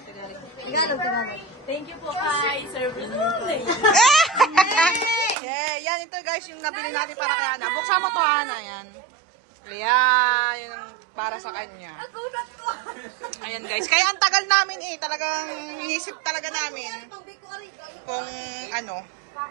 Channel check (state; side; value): drops out; left; at 5.4 s